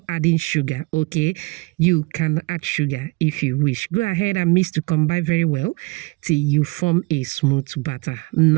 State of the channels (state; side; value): quieter; left; 24.6 dB